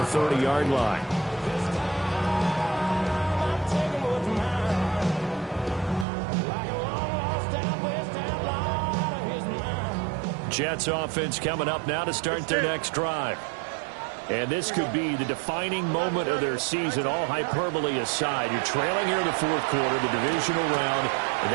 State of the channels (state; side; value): drops out; left; at 6.1 s